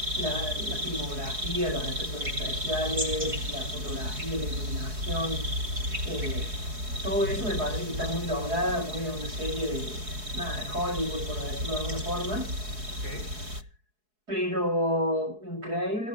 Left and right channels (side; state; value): left; late; 4.7 ms